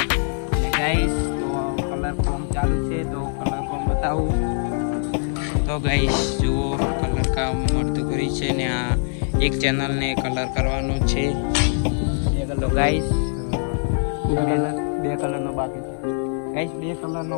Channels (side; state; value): right; silent; 58 dB below the other